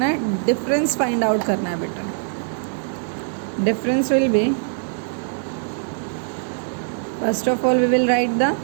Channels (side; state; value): left; silent; 62 dB below the other